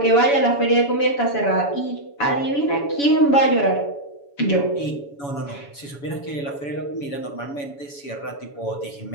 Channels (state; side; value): late; right; 7.1 ms